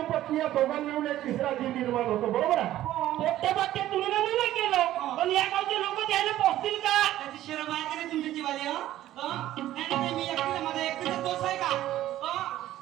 पत्नी या दोघांनी मिळून एक तिसरा जीव निर्माण होतो. बरोबर आहे? पोट्टे बाट्टे तुम्ही नाही केलं, पण या गावचे लोक द्यायला पोहोचतील का? त्याची शरम आहे का नाही तुमच्या जीवाली? नाही मी एकटीला, माझा एकटीचा दोष आहे का?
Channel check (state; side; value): quieter; left; 13.8 dB